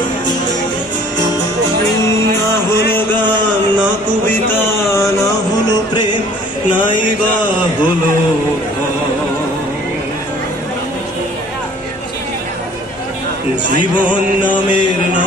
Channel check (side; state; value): both; normal; correlation 0.53